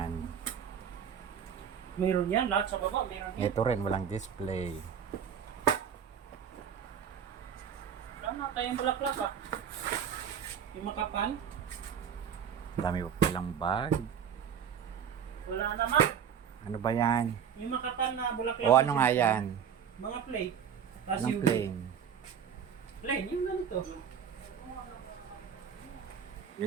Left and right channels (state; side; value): quieter; left; 7.9 dB